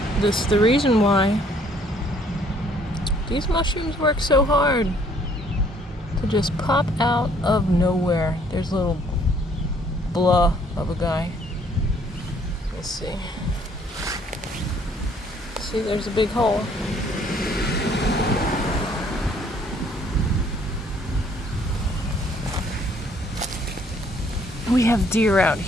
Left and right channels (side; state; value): both; normal; correlation 0.62